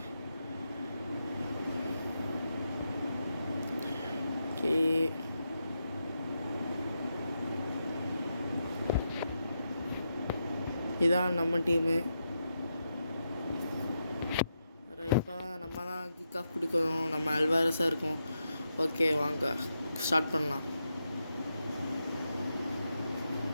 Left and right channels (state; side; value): inverted; both; correlation -0.85